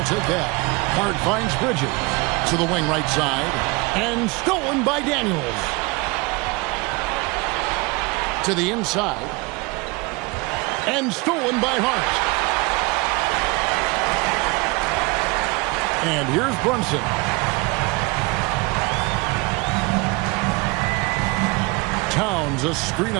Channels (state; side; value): quieter; left; 26.0 dB